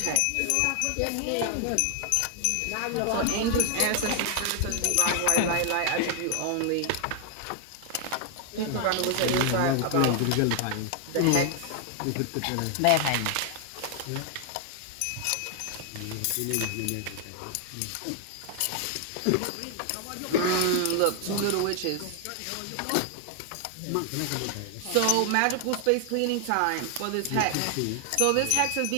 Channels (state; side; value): different; both; correlation 0.00